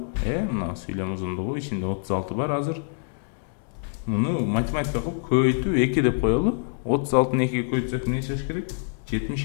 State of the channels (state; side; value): silent; right; 61 dB below the other